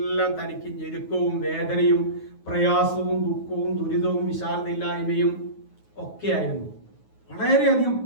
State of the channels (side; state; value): right; late; 9.4 ms